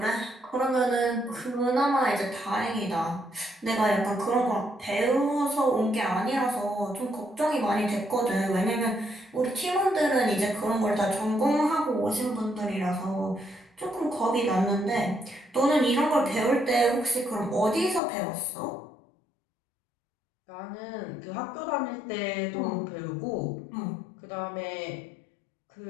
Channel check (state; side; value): drops out; right; at 18.0 s